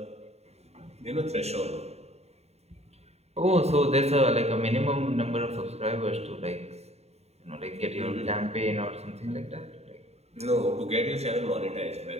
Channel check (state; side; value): late; left; 0.31 ms